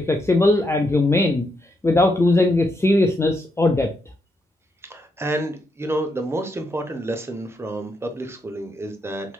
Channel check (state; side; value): normal; both; correlation 0.80